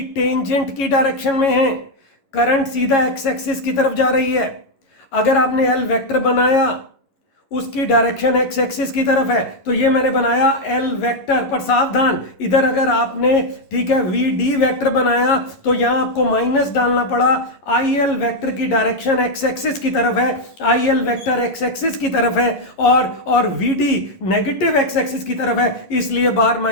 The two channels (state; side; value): late; right; 11 ms